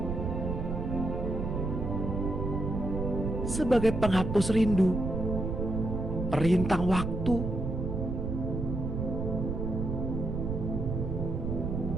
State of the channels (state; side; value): noise; right; rumble, 3 dB below the sound